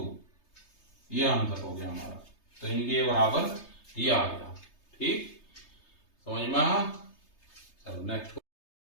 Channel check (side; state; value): right; late; 3.3 ms